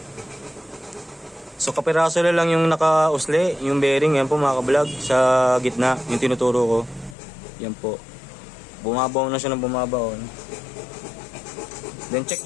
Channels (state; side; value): drops out; right; at 7.2 s